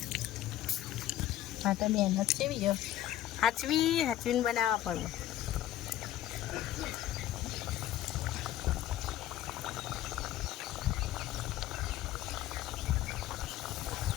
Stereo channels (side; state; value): right; quieter; 13.1 dB